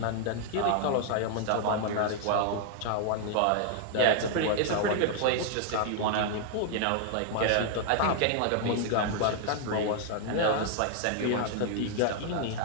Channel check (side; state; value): both; different; correlation 0.00